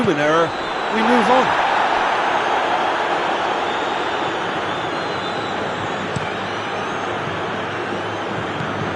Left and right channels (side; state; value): both; identical; correlation 1.00